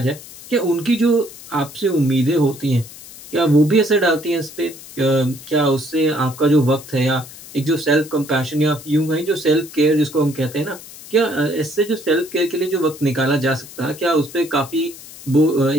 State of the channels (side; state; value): left; noise; hiss, 17 dB below the sound